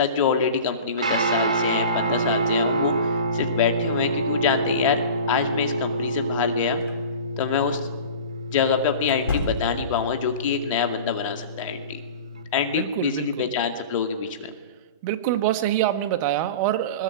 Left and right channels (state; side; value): inverted; both; correlation -0.36